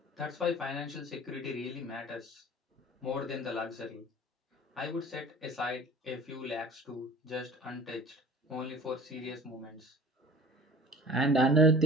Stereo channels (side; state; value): both; normal; correlation 0.44